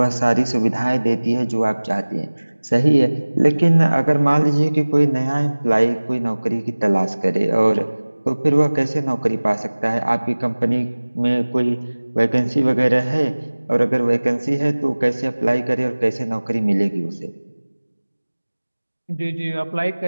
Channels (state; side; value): inverted; both; correlation -1.00